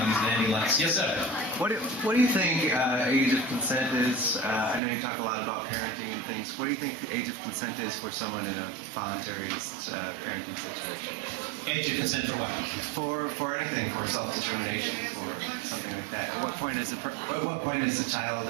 lights. Yes, sir. What do you think age of consent is? I know you talk a lot about parenting and things. What do you think the age of consent is for someone in a voluntary parenting situation? Age of consent for what? For anything, for self-determination, for something like that. At what point is a child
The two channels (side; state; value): left; drops out; at 4.8 s